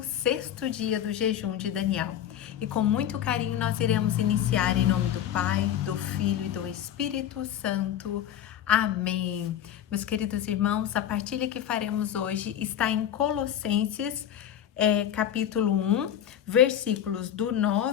dia do jejum de Daniel. E com muito carinho nós iremos iniciar em nome do Pai, do Filho e do Espírito Santo. Amém. Meus queridos irmãos, a partilha que faremos hoje está em Colossenses, capítulo 1, versículos do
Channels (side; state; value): right; quieter; 10.4 dB